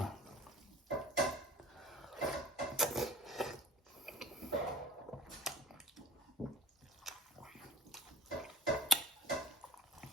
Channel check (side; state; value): both; normal; correlation 0.42